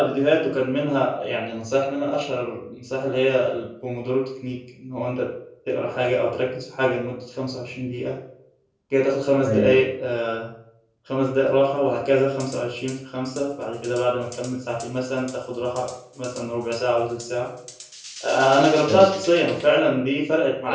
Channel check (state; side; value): identical; both; correlation 1.00